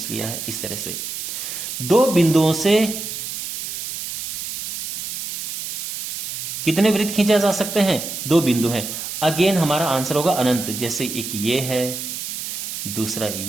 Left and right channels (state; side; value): noise; right; hiss, 6 dB below the sound